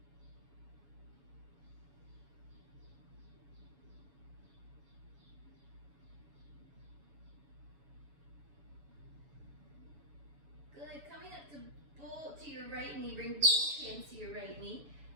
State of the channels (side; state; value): left; late; 7.1 ms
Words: Good. Coming up to your right knee, bring both hands to your right knee,